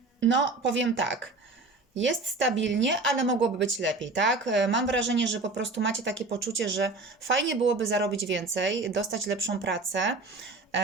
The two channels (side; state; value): left; quieter; 3.4 dB